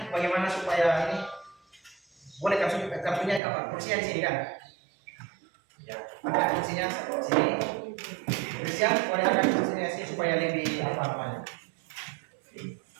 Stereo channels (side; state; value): left; drops out; at 3.4 s